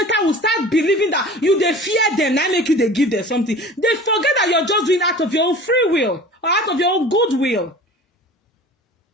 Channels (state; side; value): normal; both; correlation 0.40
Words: will start believing that you they fear them, now make you they give them something. They forget that you're just doing out of your own free will or out of your own goodwill.